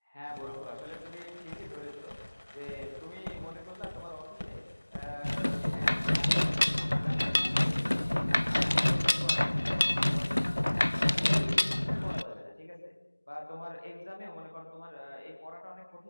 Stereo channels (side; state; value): both; inverted; correlation -1.00